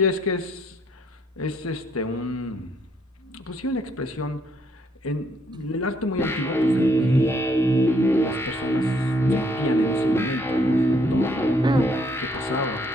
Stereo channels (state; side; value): normal; both; correlation 0.69